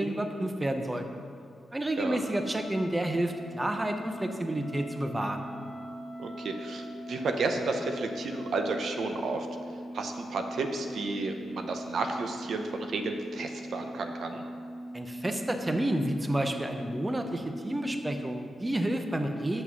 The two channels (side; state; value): both; normal; correlation 0.89